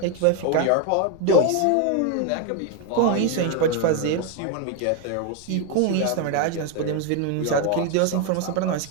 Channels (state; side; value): different; both; correlation 0.01